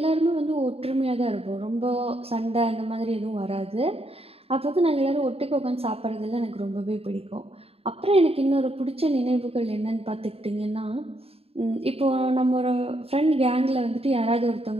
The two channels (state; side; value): late; left; 0.28 ms